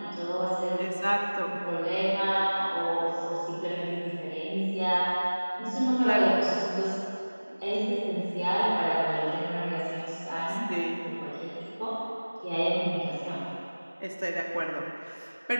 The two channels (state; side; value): inverted; both; correlation -1.00